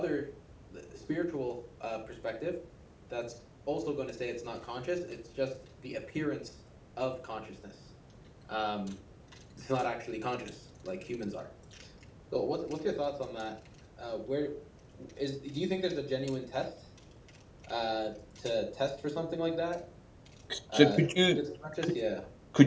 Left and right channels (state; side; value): identical; both; correlation 1.00